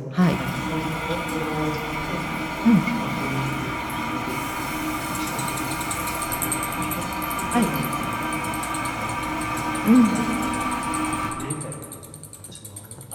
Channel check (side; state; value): both; identical; correlation 1.00